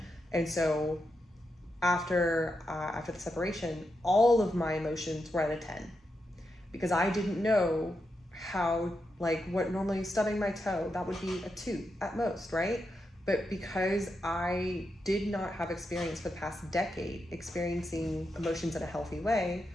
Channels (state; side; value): normal; both; correlation 0.86